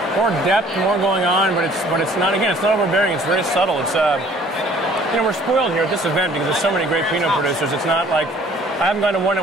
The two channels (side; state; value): both; normal; correlation 0.55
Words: depth, more going on, but it's not, again, it's not overbearing. It's very subtle. It's you know, we're spoiled here at this event because there's so many great Pinot producers. It's not like I haven't gone to one